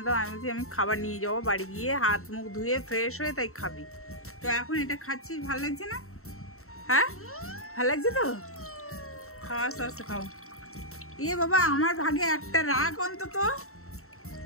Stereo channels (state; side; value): late; right; 0.63 ms